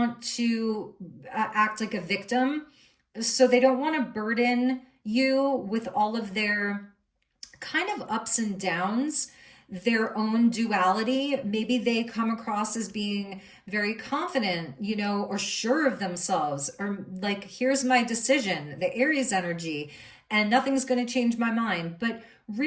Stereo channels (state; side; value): identical; both; correlation 1.00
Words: to act like a victim. So they don't want to burden you with all of their kind of ups and downs. their own duality. Maybe they come across as being very confident, you know, or sure of themselves, or like, here's my decision, the Aries energy, and nothing's going to change my mind. But